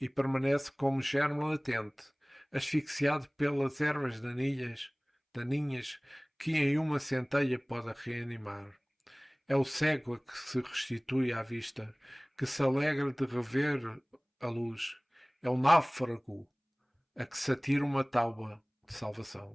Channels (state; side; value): identical; both; correlation 1.00